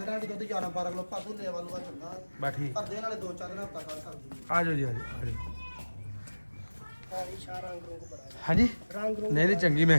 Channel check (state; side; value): inverted; both; correlation -1.00